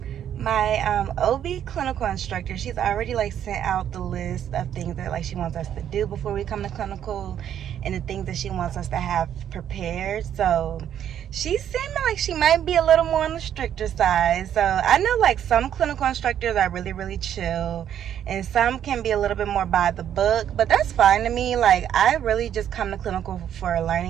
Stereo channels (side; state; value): left; quieter; 9.9 dB